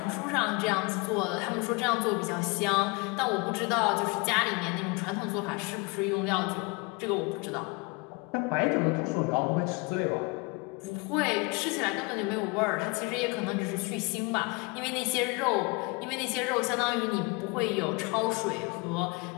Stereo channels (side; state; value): right; quieter; 28.6 dB